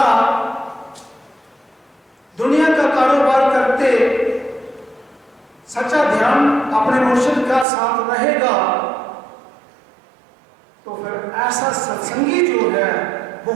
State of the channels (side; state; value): left; drops out; at 7.7 s